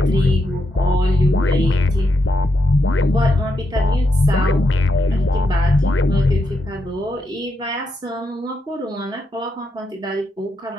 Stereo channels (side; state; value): both; normal; correlation 0.82